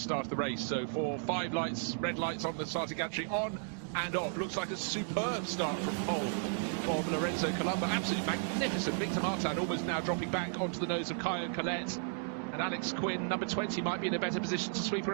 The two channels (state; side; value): silent; left; 55 dB below the other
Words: of the race. So 5 lights, red lights on the starting gantry, on and off. Looks like a superb start from pole from Lorenzo Colombo. Absolutely magnificent. Victor Martin almost now dropping back onto the nose of Caio Collet. And Alex Quinn, number 20, might be in a better position to sweep